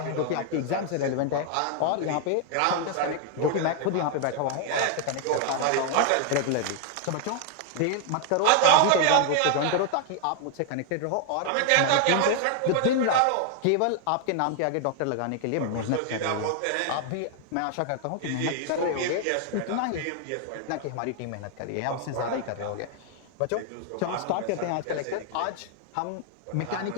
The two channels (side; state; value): both; different; correlation 0.00